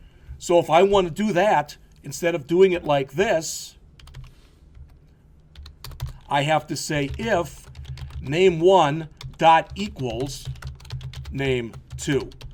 So if I want to do that, instead of doing it like this, I have to say if name1 dot equals name2.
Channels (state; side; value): identical; both; correlation 1.00